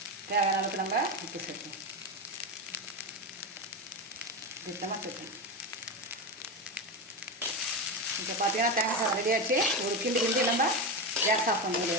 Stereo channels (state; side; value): normal; both; correlation 0.16